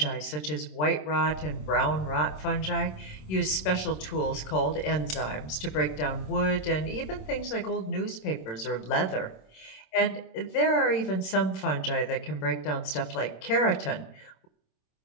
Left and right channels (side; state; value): right; late; 26 ms